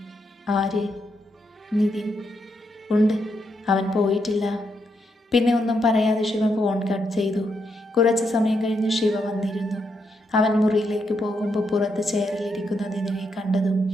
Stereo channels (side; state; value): both; normal; correlation 0.80